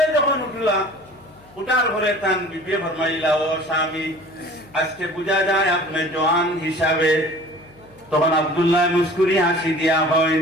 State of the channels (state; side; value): noise; left; hum, 27 dB below the sound